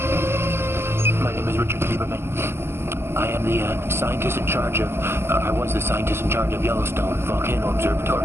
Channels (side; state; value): left; late; 0.12 ms